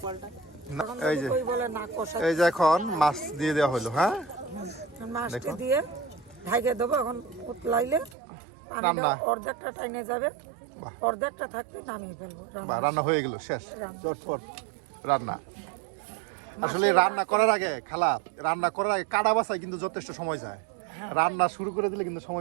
না, এখন এই যে কই বলে না কষা এই যে এখন মাছ দিয়ে দেওয়া হলো, হ্যাঁ, মাছটি দেখো। দিয়ে ঢাইকে দেবো। এখন উতলাইলে রান্না। পানিটা অর্ধেকটা টাইনে যাবে, বাহ। অর্ধেকটা থাকতে নামিয়ে ফেলবো। বা রান্না হয়ে গেল, শেষ, রান্না। চটপট রান্না। আসলে রান্না করার আগে খালা, রান্না করার আগে কাটা বাছাই কিন্তু যথেষ্ট সময় যায়। রান্না শুরু করে দিলে কিন্তু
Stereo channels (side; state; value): left; drops out; at 8.2 s